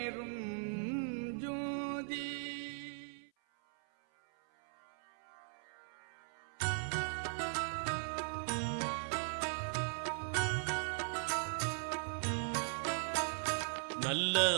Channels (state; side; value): silent; left; 52 dB below the other